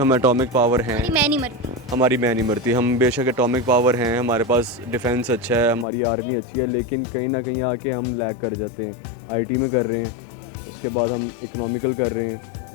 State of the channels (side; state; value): right; drops out; at 5.9 s